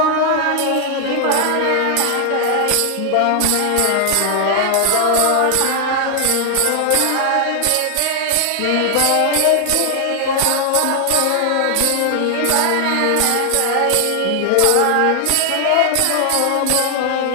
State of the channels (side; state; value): both; different; correlation 0.00